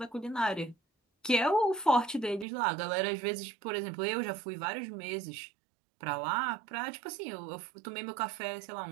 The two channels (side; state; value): left; drops out; at 2.5 s